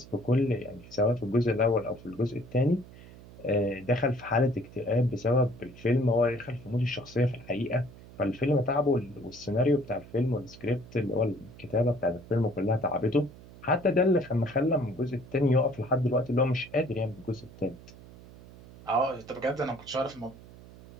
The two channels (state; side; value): noise; right; hum, 19 dB below the sound